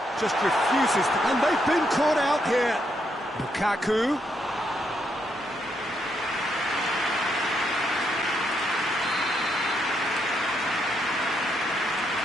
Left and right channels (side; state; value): both; normal; correlation 0.78